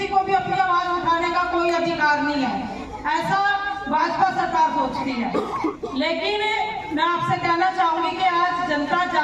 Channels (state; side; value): identical; both; correlation 1.00